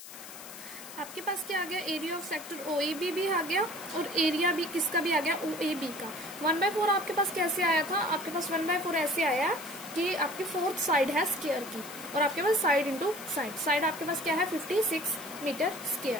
आपके पास क्या आ गया, एरिया ऑफ सेक्टर OAB भी आ गया और एरिया भी किसका भी आ गया, OAB का। 1/4 आपके पास कैसे आया था, आपके पास 1/4 ऐसे आया कि आपकी 4th साइड है स्क्वायर की और आपके पास साइड इंटू साइड, साइड आपके पास क्या है, 56 मीटर स्क्वायर।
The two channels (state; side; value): noise; left; hiss, 14 dB below the sound